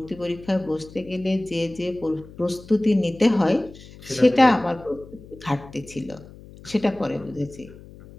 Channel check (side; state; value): left; noise; hum, 19 dB below the sound